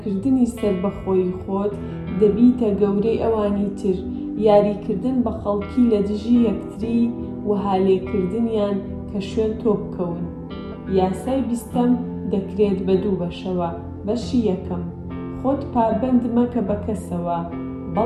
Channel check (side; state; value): both; identical; correlation 1.00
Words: سەربەخۆیی خۆت دەبیتە گەورەی ئەوانی تر. یاریکردن بە خەڵکی لە دژی یەکتری و هالێکردنیان کە شوێن تۆ بکەون. یاسای 20ەم دەکرێت بە دوو بەشەوە. بەشی یەکەم، خۆت پابەند مەکە بە کەسەوە،